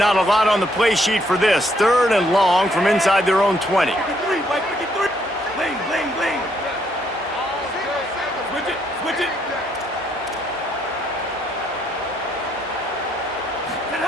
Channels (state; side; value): normal; both; correlation 0.71